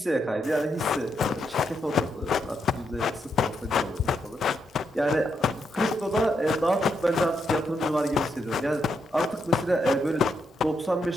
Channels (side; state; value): both; normal; correlation 0.81